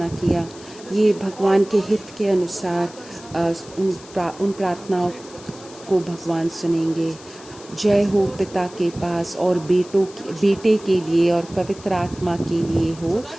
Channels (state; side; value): noise; left; hiss, 20 dB below the sound